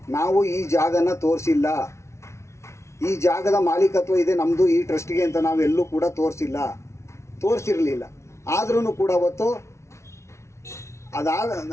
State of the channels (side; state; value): right; late; 0.13 ms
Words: ನಾವು ಈ ಜಾಗನ ತೋರಿಸಿಲ್ಲ, ಈ ಜಾಗದ ಮಾಲೀಕತ್ವ ಇದೆ ನಮ್ಮದು ಈ ಟ್ರಸ್ಟ್ಗೆ ಅಂತ ನಾವೆಲ್ಲೂ ಕೂಡ ತೋರಿಸಿರಲಿಲ್ಲ. ಆದ್ರೂ ಕೂಡ ಅವತ್ತು